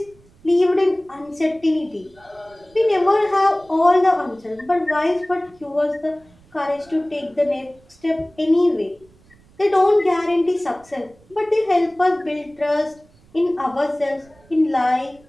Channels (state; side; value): noise; right; rumble, 29 dB below the sound